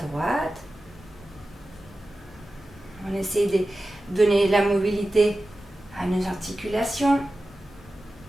On essaie de donner la mobilité à nos articulations.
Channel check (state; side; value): normal; both; correlation 0.94